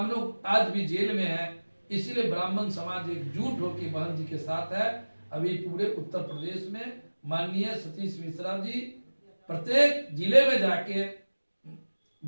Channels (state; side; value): inverted; both; correlation -1.00